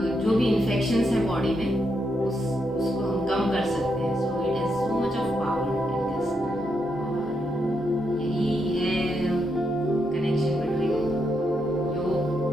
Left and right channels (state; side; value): normal; both; correlation 0.81